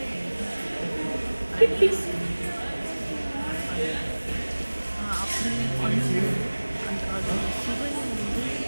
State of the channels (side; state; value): both; inverted; correlation -1.00